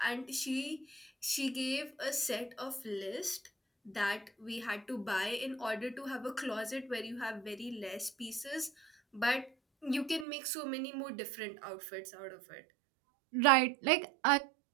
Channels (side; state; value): left; drops out; at 10.2 s